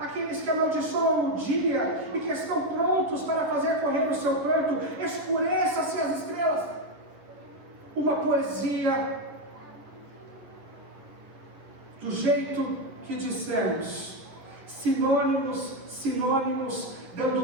que amaldiçoam o dia e que estão prontos para fazer correr o seu pranto, escureça-se as estrelas. Uma poesia do jeito que dissemos, sinônimos,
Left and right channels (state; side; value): late; left; 10 ms